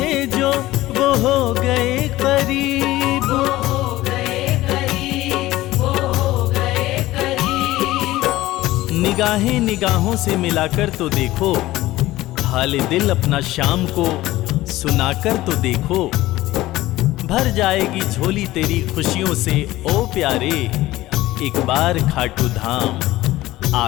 जो वो हो गए करीब। वो हो गए करीब, वो हो गए करीब। निगाहें निगाहों से मिलाकर तो देखो। हाल दिल अपना शाम को सुनाकर तो देखो। भर जाएगी झोली तेरी खुशियों से ओ प्यारे। एक बार खाटू धाम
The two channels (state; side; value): quieter; right; 16.9 dB